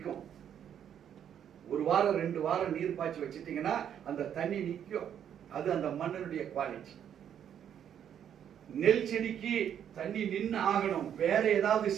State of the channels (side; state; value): left; quieter; 9.2 dB